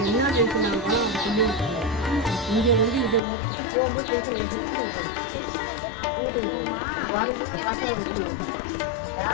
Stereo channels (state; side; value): drops out; right; at 3.2 s